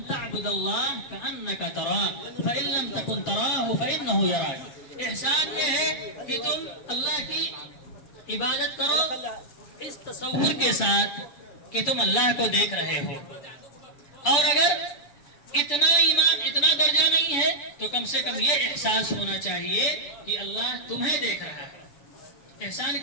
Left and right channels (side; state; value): right; late; 7.2 ms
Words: تعبد اللہ کأنک تراہ فإن لم تکن تراہ فإنہ یراک. احسان یہ ہے کہ تم اللہ کی عبادت کرو اس تصور کے ساتھ کہ تم اللہ کو دیکھ رہے ہو. اور اگر اتنا ایمان اتنا درجہ نہیں ہے تو کم سے کم یہ احساس ہونا چاہیے کہ اللہ تمہیں دیکھ رہا ہے. احسان